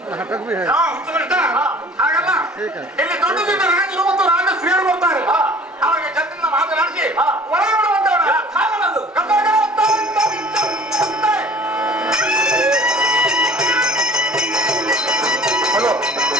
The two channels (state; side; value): normal; both; correlation 0.48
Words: ಹಾಗಲ್ಲ ಇಲ್ಲಿ ದೊಡ್ಡದಿಂದ ರಾಜರು ಮತ್ತು ರಾಜ ಶ್ರೀಯರು ಬರ್ತಾರೆ ಅವಾಗ ಜನರಿಂದ ಮಾತನಾಡಿಸಿ ಒಳಗೆ ಬಿಡುವಂತವ್ರು ಹಾಗಲ್ಲದು ಹಲೋ